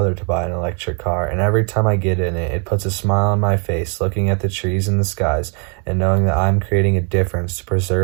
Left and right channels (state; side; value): quieter; left; 38.5 dB